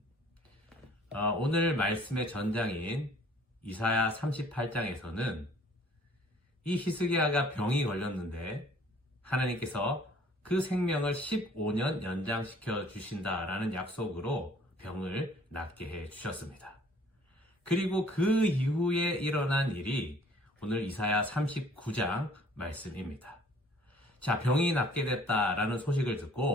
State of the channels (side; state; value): both; normal; correlation 0.56